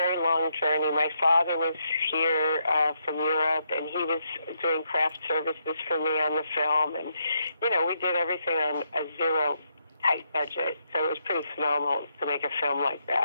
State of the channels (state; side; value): inverted; both; correlation -0.78